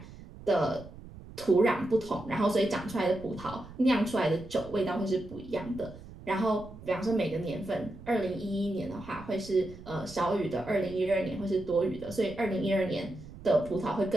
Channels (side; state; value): right; noise; rumble, 16 dB below the sound